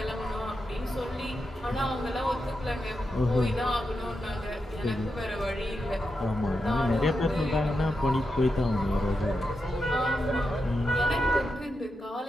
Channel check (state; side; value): normal; both; correlation 0.87